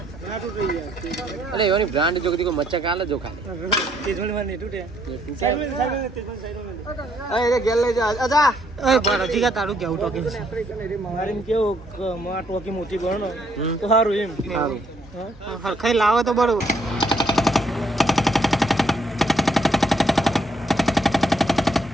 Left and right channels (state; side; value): normal; both; correlation 0.70